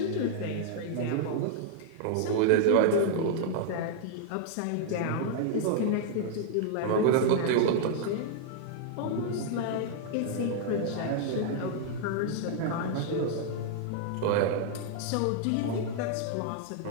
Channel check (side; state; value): both; different; correlation -0.01